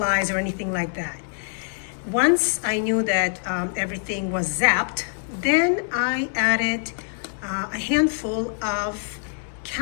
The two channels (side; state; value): right; silent; 62 dB below the other